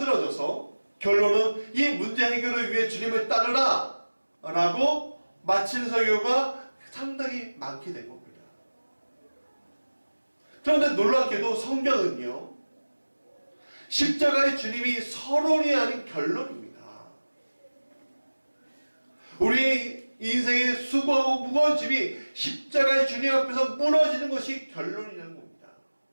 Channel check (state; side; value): inverted; both; correlation -1.00